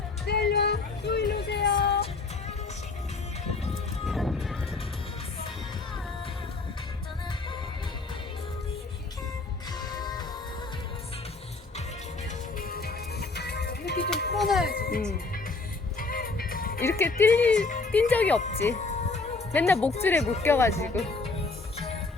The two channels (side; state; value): right; quieter; 3.8 dB